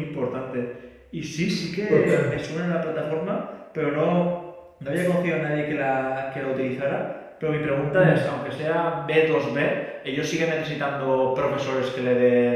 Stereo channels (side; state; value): both; identical; correlation 1.00